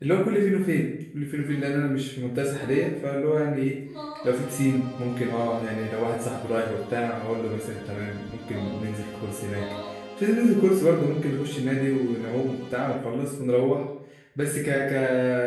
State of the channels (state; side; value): identical; both; correlation 1.00